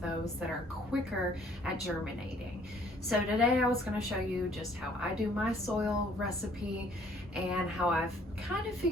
those that are quicker at germinating. So, today I was going to show you just how I do my soil recipe and how I've kind of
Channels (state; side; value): normal; both; correlation 0.60